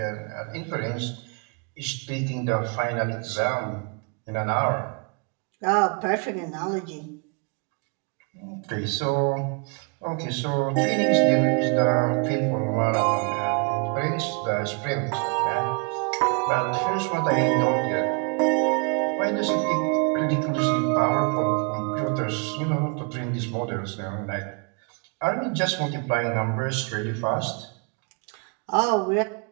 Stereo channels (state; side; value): quieter; left; 36.0 dB